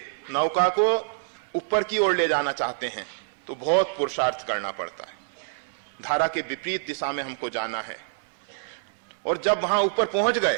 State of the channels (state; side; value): silent; left; 61 dB below the other